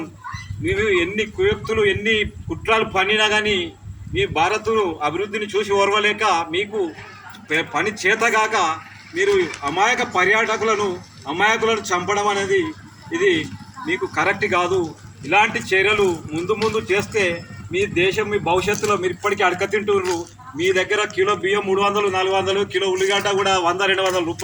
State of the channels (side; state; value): both; identical; correlation 1.00